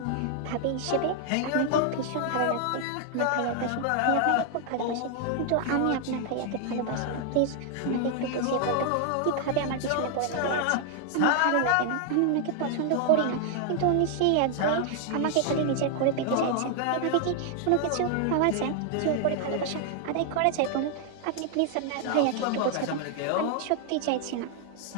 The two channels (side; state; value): both; different; correlation 0.00